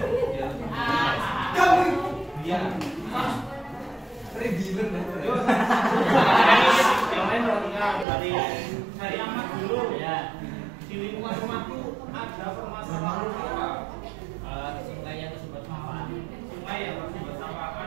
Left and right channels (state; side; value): drops out; left; at 8.1 s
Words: Kamu dia regimen yang lain dari amat dulu ya. Di lingkungan rumahku ada permasalahan apa? Sungai yang tersumbat sampah. Sungai yang tersumbat sampah